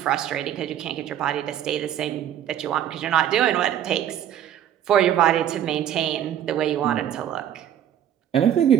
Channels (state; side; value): quieter; left; 10.5 dB